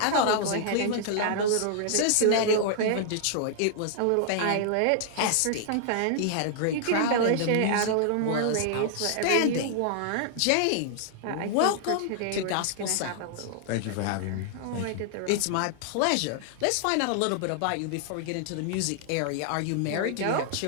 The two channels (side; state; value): both; different; correlation -0.01